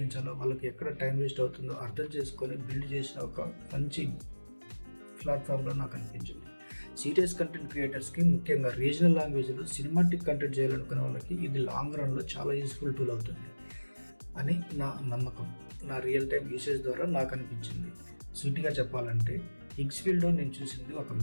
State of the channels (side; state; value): both; inverted; correlation -1.00